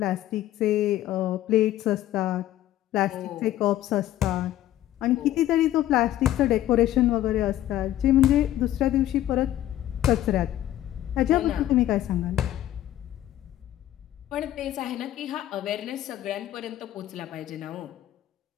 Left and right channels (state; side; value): quieter; right; 13.2 dB